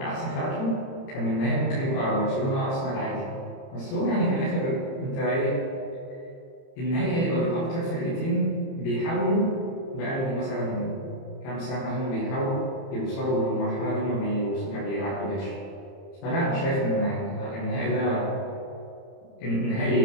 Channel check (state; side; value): late; right; 30 ms